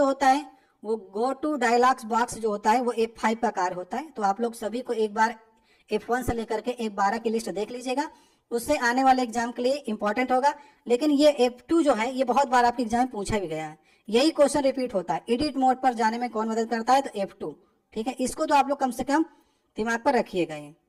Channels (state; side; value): identical; both; correlation 1.00